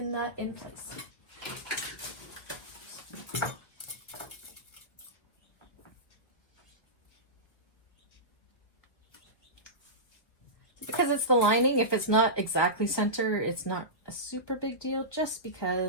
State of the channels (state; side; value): late; right; 1.7 ms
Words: that in place. Because it's the lining, if it's not exactly center, it's not a super big deal, just